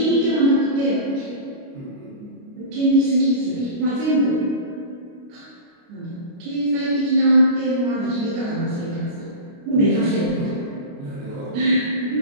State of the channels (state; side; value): late; left; 29 ms